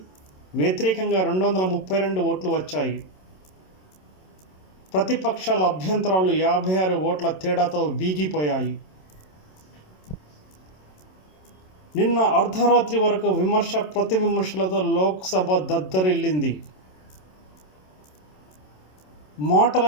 వ్యతిరేకంగా 232 ఓట్లు వచ్చాయి. ప్రతిపక్షాల అభ్యంతరాలు 56 ఓట్ల తేడాతో వీగిపోయాయి. నిన్న అర్ధరాత్రి వరకు విమర్శ ప్రతి విమర్శలతో లోక్సభ దద్దరిల్లింది. మాటల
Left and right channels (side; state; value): right; late; 27 ms